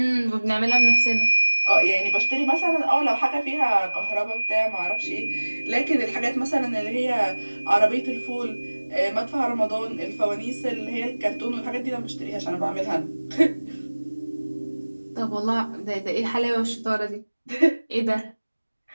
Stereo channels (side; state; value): both; inverted; correlation -1.00